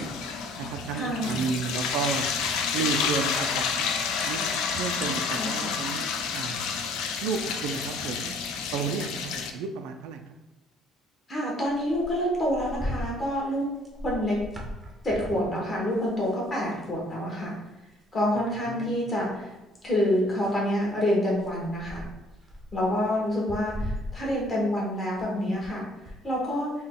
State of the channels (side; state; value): both; normal; correlation 0.57